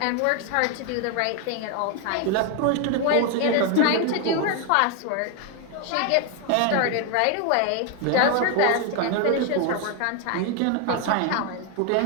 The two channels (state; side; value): different; both; correlation 0.01